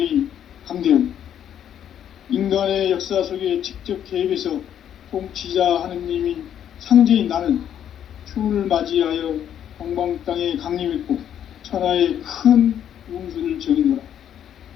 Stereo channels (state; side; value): quieter; right; 9.8 dB